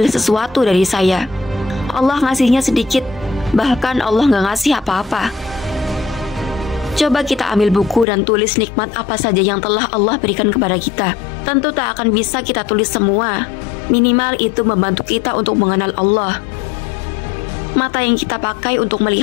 sesuatu dari saya. Allah ngasihnya sedikit, bahkan Allah nggak ngasih apa-apa. Coba kita ambil buku dan tulis nikmat apa saja yang telah Allah berikan kepada kita. Tentu tak akan bisa kita tulis semua. Minimal itu membantu kita untuk mengenal Allah. Mata yang kita pakai untuk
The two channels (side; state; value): right; drops out; at 8.1 s